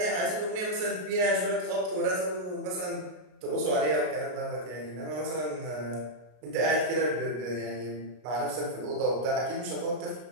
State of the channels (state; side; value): late; left; 33 ms